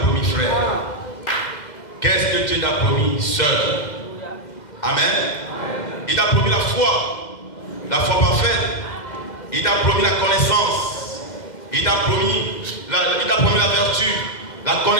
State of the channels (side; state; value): right; late; 2.1 ms